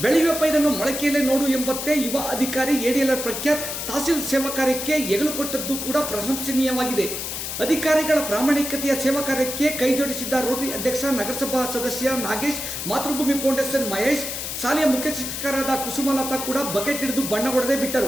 ಬೆಳೆಯುವ ಪೈರನ್ನು ಮೊಳಕೆಯಲ್ಲೇ ನೋಡು ಎಂಬಂತೆ ಯುವ ಅಧಿಕಾರಿ ಎಡಿಎಲ್ಆರ್ ಪ್ರಖ್ಯಾತ್ ತಹಸೀಲ್ ಸೇವಾ ಕಾರ್ಯಕ್ಕೆ ಹೆಗಲು ಕೊಟ್ಟದ್ದು ಕೂಡ ಪ್ರಶಂಸನೀಯವಾಗಿದೆ. ಅಧಿಕಾರಿಗಳ ಪ್ರಾಮಾಣಿಕತೆಯ ಸೇವಾ ಕಾರ್ಯಕ್ಕೆ ಕೈಜೋಡಿಸಿದ್ದ ರೋಟರಿ ಅಧ್ಯಕ್ಷ ನಗರಸಭಾ ಸದಸ್ಯ ನಾಗೇಶ್, ಮಾತೃಭೂಮಿ ಫೌಂಡೇಶನ್ ಮಹೇಶ್, ಶಾಲೆಯ ಮುಖ್ಯ ಶಿಕ್ಷಕರಾದ ಕುಸುಮಲತಾ ಕೂಡ ಬಕೆಟ್ ಹಿಡಿದು ಬಣ್ಣ ಹೊಡೆದೇ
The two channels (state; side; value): noise; left; hiss, 5 dB below the sound